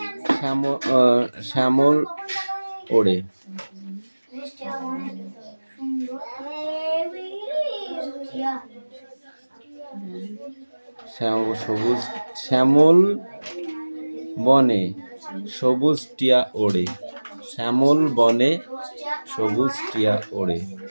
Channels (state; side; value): inverted; both; correlation -1.00